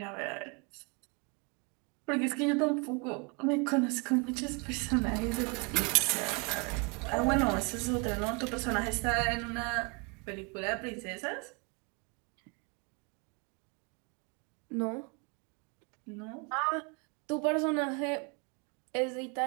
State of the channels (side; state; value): left; quieter; 31.9 dB